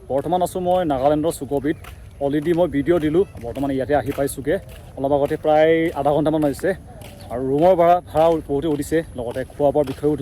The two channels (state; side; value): identical; both; correlation 1.00